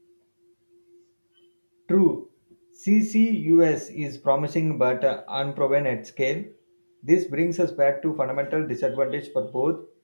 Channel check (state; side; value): inverted; both; correlation -1.00